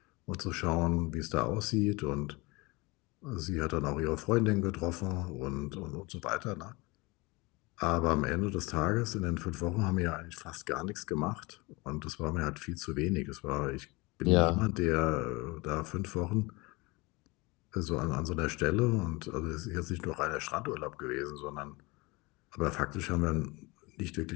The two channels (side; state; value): right; quieter; 24.9 dB